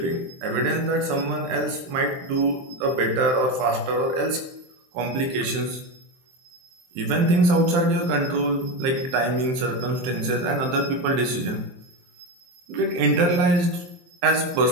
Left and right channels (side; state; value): left; late; 23 ms